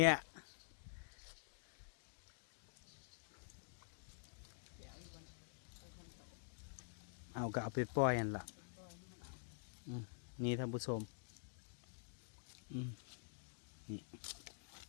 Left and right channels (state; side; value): silent; right; digital silence